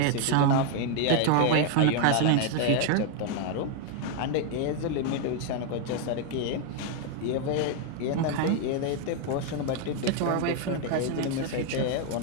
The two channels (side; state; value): both; different; correlation 0.00